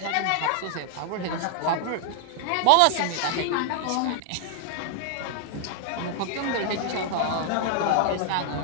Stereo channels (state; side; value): different; both; correlation 0.00